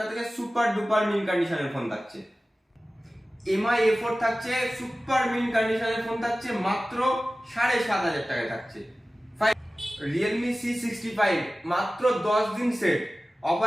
থেকে। সুপার ডুপার মিন কন্ডিশনের ফোন থাকছে। MI A4 থাকছে, সুপার মিন কন্ডিশনের ফোন থাকছে মাত্র 7,500 টাকায় থাকছে। Realme C65 মাত্র 10 দিন সেট,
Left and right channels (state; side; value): normal; both; correlation 0.96